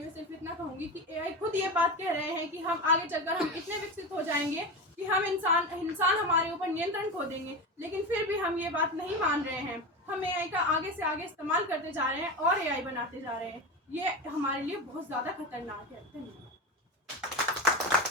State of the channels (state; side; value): normal; both; correlation 0.22